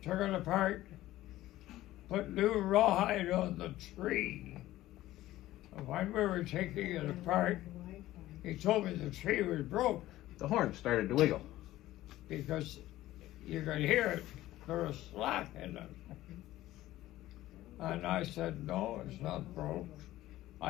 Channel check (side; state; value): right; quieter; 15.5 dB